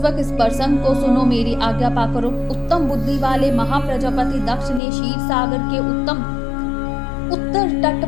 इस प्रसंग को सुनो, मेरी आज्ञा पाकर उत्तम बुद्धि वाले महाप्रजापति दक्ष ने क्षीर सागर के उत्तर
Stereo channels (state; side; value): drops out; right; at 4.8 s